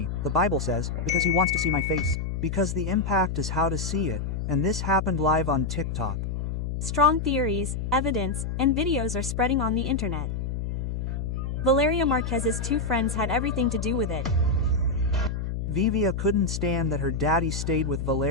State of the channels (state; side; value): noise; left; hum, 3 dB below the sound